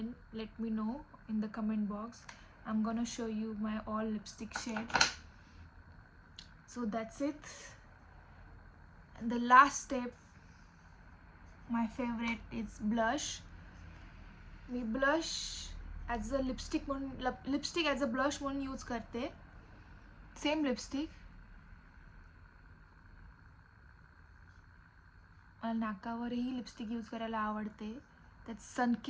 let me know in the comment box. I'm gonna show you my all lipstick shades. So that's it. And the last step, my favorite, is blush. Me blush as a lipstick म्हणून lipstick as a blush म्हणून use करते. Same lipstick. मला नाकावरही lipstick use करायला आवडते. त्यात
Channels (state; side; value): identical; both; correlation 1.00